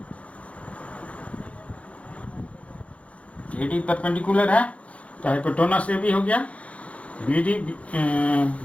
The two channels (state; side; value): late; right; 0.064 ms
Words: AD परपेंडिकुलर है, तो हाइपोटेनस AB हो गया, BD